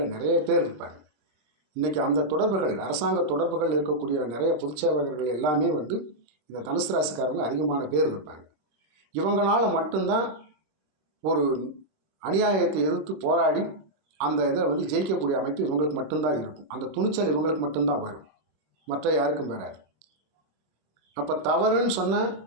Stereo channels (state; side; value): late; left; 26 ms